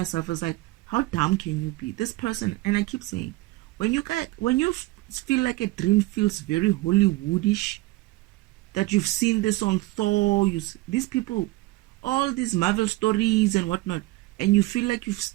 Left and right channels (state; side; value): quieter; left; 20.0 dB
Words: it's like, how dumb can you be? This person, and I keep saying, when you feel like a dream feels very Hollywoodish, that you've seen this on Thor, these people, all these Marvel stories and whatnot, and you feel like